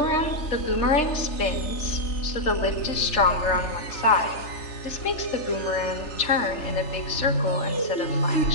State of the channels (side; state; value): right; late; 3.4 ms